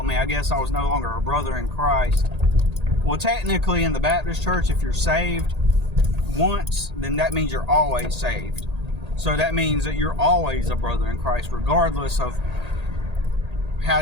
me. I guess I was no longer a brother in Christ. Well, technically in the Baptist church, if you're saved once, then that means you're always saved. So that means that you're always a brother in Christ, regardless of how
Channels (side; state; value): left; late; 1.8 ms